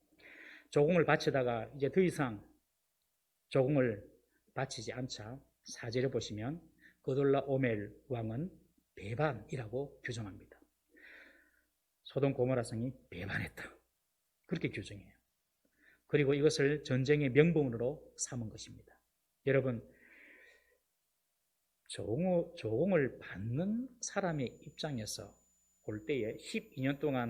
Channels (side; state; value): both; identical; correlation 1.00